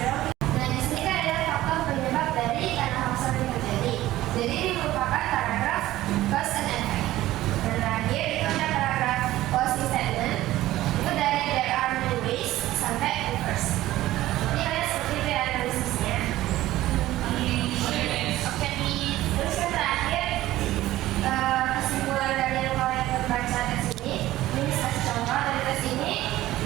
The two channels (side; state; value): left; quieter; 15.6 dB